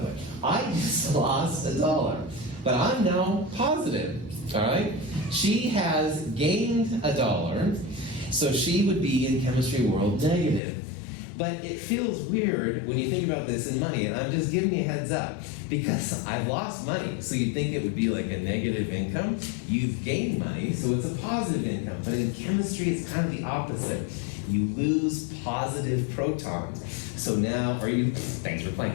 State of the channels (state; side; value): drops out; right; at 10.6 s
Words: way. I just lost $1, but I'm now positive, all right? She has gained $1, so she would be in chemistry world negative. But it feels weird when you think about this in money, and I'm just giving you a heads up, because I've lost money, so you'd think it would be like a negative income. You've gained money, so it's a positive income. But in chemistry, it's kind of the opposite. You lose positive protons. So now, thanks for